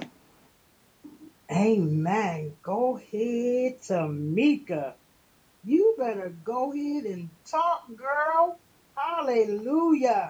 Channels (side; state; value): both; identical; correlation 1.00